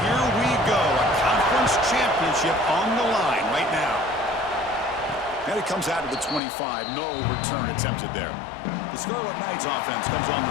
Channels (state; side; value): drops out; right; at 6.4 s